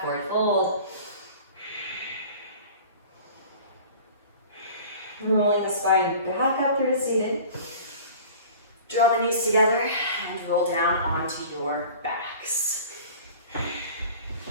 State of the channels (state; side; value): inverted; both; correlation -0.43